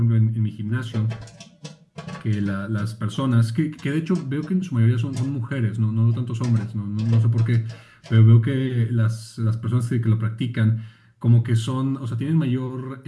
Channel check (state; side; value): identical; both; correlation 1.00